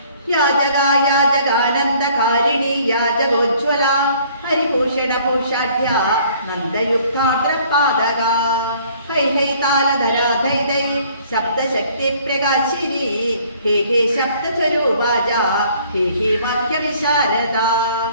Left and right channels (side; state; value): both; inverted; correlation -0.57